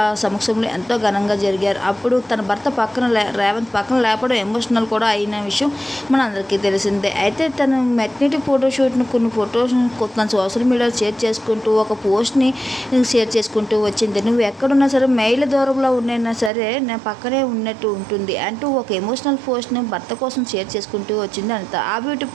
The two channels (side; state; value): left; drops out; at 16.5 s